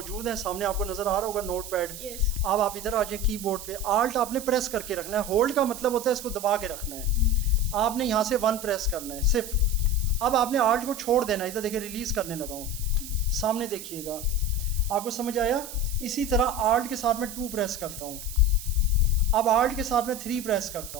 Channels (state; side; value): noise; right; hiss, 12 dB below the sound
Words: हैं, सामने आपको नज़र आ रहा होगा नोट पैड। यस अब आप इधर आ जाए कीबोर्ड पे, आल्ट आपने प्रेस करके रखना है, होल्ड का मतलब होता है इसको दबा के रखना है। आपने यहाँ से 1 प्रेस करना है सिर्फ। अब आपने आल्ट को छोड़ देना है, इधर देखिए रिलीज़ करने लगा हूँ, सामने देखिएगा, आपको समझ आया। इसी तरह आल्ट के साथ मैं 2 प्रेस करता हूँ, अब आल्ट के साथ मैं 3 प्रेस करता